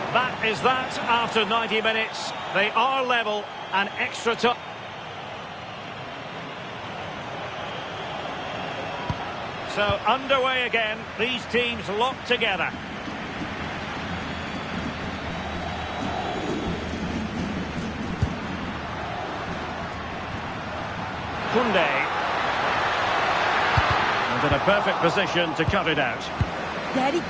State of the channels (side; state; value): both; identical; correlation 1.00